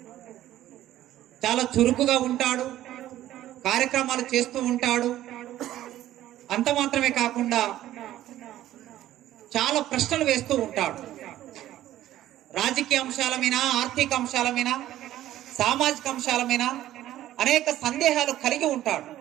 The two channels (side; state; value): left; quieter; 13.5 dB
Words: చాలా చురుకుగా ఉంటాడు, కార్యక్రమాలు చేస్తూ ఉంటాడు. అంత మాత్రమే కాకుండా చాలా ప్రశ్నలు వేస్తూ ఉంటాడు. రాజకీయ అంశాల మీద, ఆర్థిక అంశాల మీద, సామాజిక అంశాల మీద అనేక సందేహాలు కలిగి ఉంటాడు.